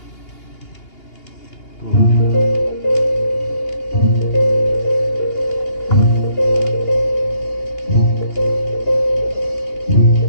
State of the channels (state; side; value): late; right; 2.8 ms